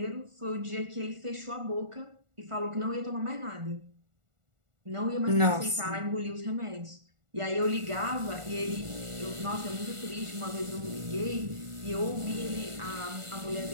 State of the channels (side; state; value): left; late; 1.4 ms